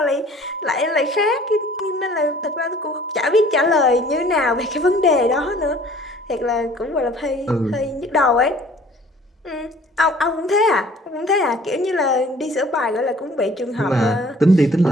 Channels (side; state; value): both; normal; correlation 0.52